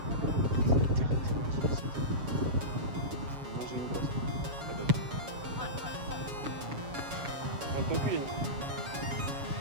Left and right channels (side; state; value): left; late; 7.1 ms